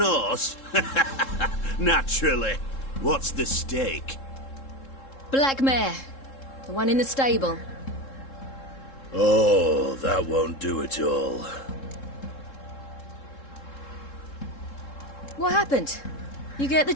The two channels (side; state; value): right; late; 3.7 ms